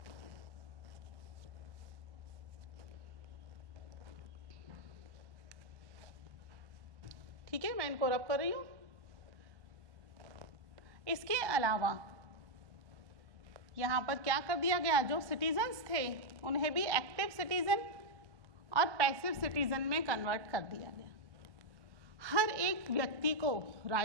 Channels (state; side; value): late; left; 1.1 ms